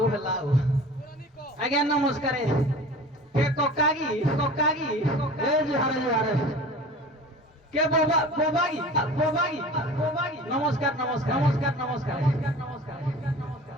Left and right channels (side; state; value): both; normal; correlation 0.40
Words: ହେଲା ଆଉ ଆଜ୍ଞା ନମସ୍କାର କେ କକା କି ଏ ଜୁହାର କେ ବୋବା କି ନମସ୍କାର